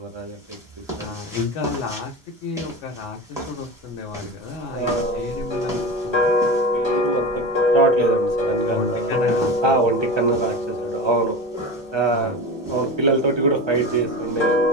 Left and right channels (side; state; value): both; normal; correlation 0.27